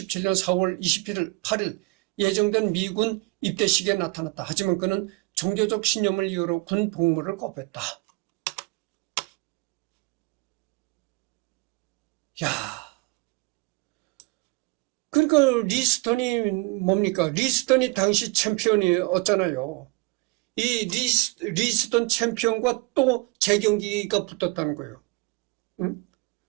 4월 8일 예정된 미군 입대식에 나타났다. 하지만 그는 종교적 신념을 이유로 군 복무를 거부했다. 그러니까 리스턴이 뭡니까? 리스턴이 당시 챔피언이었잖아요. 이 리스턴 챔피언과 또 재경기가 붙었다는 거예요. 응?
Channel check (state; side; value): quieter; left; 23.8 dB